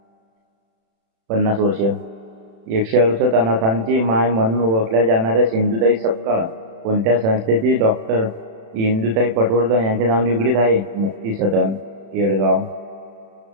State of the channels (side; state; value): left; late; 36 ms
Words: 50 वर्ष. 168 अनाथांची माय म्हणून ओळखल्या जाणाऱ्या सिंधुताई सपकाळ कोणत्या संस्थेची डॉक्टर इंदुताई पटवर्धन यांचे नाव निगडीत आहे? मुक्ती सदन, केळगाव.